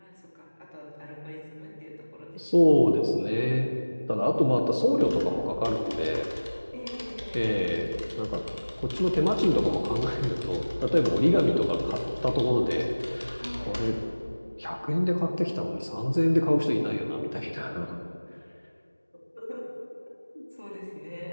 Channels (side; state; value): both; inverted; correlation -1.00